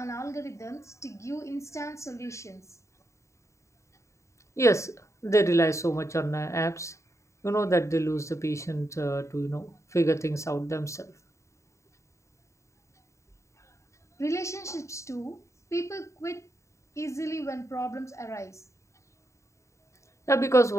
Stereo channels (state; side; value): late; right; 0.14 ms